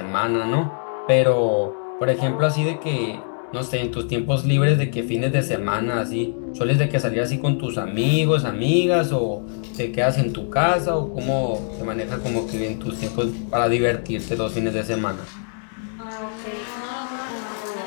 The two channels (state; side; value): silent; right; digital silence